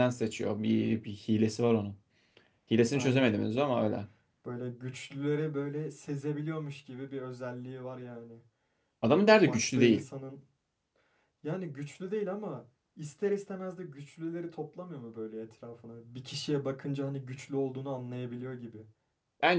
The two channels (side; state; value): both; identical; correlation 1.00